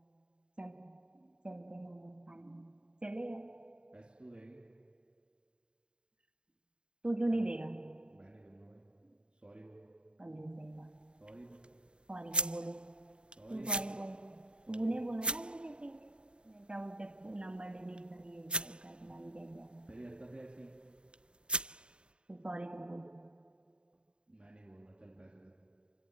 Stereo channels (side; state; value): left; late; 0.051 ms